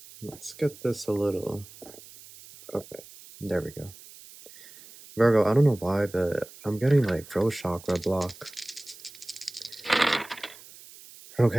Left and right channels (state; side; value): noise; right; hiss, 19 dB below the sound